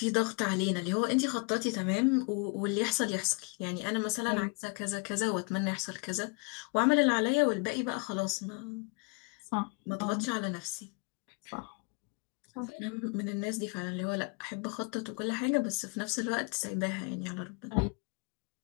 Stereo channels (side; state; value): right; quieter; 32.8 dB